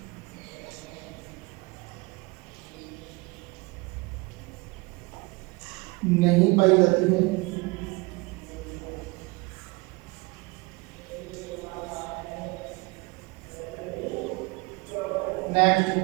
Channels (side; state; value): left; quieter; 25.7 dB